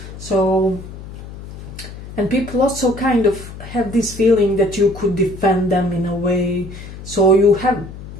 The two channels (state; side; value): noise; left; hum, 13 dB below the sound